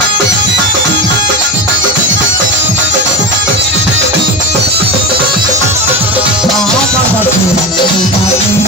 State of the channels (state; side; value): normal; both; correlation 0.22